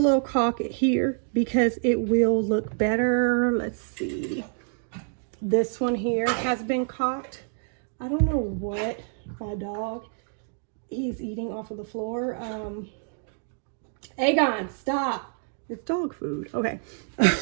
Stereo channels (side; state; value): left; silent; 60 dB below the other